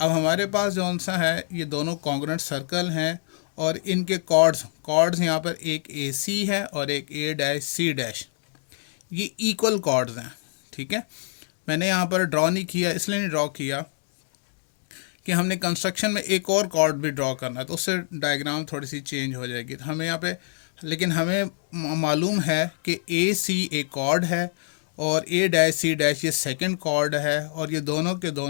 हमारे पास जौन सा है ये दोनों कॉन्ग्रेंट सर्कल हैं और इनके कॉर्ड्स यहाँ पर एक ए सी है और एक ए डैश सी डैश। ये इक्वल कॉर्ड्स हैं। ठीक है, मैंने यहाँ पर ड्रॉ नहीं किया, इसलिए नहीं ड्रॉ किया कि हमने कंस्ट्रक्शन में एक और कॉर्ड भी ड्रॉ करना है तो उससे डायग्राम थोड़ी सी चेंज हो जाएगी। तो हमें यहाँ पे, लेकिन हमें मालूम है कि ए सी एक कॉर्ड है और ए डैश सी डैश ये सेकंड कॉर्ड है और ये दोनों के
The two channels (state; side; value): silent; right; 62 dB below the other